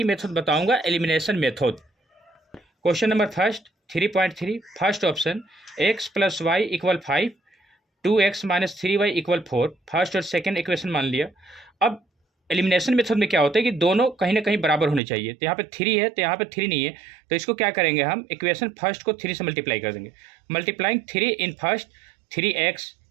मेथड बताऊंगा, elimination method. Question number first 3.3 first option x plus Y equal 5, 2x minus 3y equal 4। First और सेकेंड इक्वेशन मान लिया। अब एलिमिनेशन मेथड में क्या होता है कि दोनों कहीं ना कहीं बराबर होने चाहिए। तो यहाँ पे 3 है तो यहाँ पे 3 नहीं है, तो इसको क्या करेंगे हम, इक्वेशन फर्स्ट को 3 से मल्टीप्लाई कर देंगे। Multiplying 3 in first 3x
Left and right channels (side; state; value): left; drops out; at 15.0 s